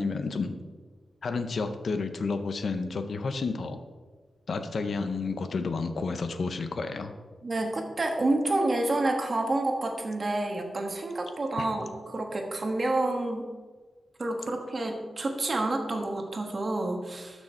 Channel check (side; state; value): both; normal; correlation 0.90